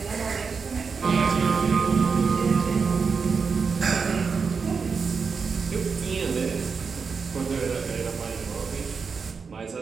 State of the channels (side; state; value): left; quieter; 5.4 dB